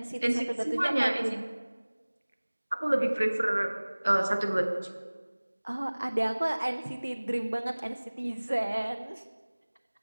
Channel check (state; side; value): inverted; both; correlation -1.00